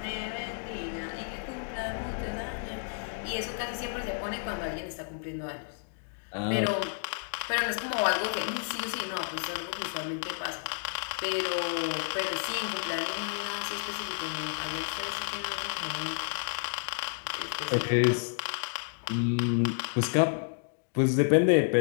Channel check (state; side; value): silent; right; digital silence